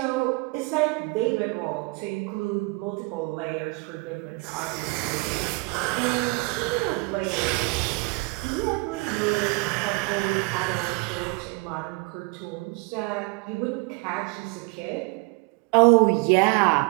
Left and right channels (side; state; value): left; quieter; 28.3 dB